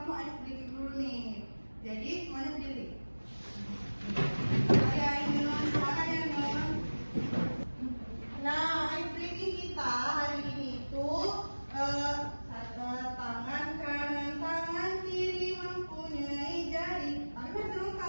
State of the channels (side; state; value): both; inverted; correlation -1.00